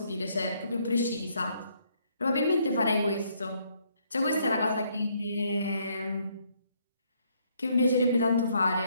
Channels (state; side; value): inverted; both; correlation -0.70